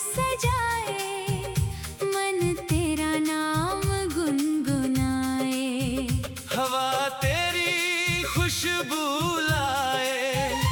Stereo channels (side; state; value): both; identical; correlation 1.00